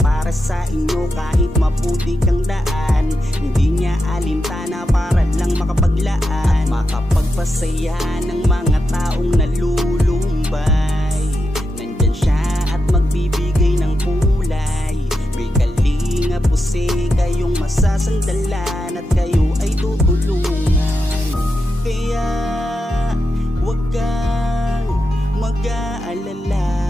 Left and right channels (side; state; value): both; normal; correlation 0.87